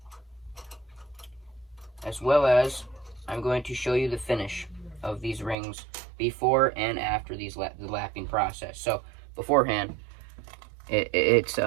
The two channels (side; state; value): left; drops out; at 5.6 s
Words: As well as, I'm going to show you the finish of these rings before and after the lapping process. So beforehand, it's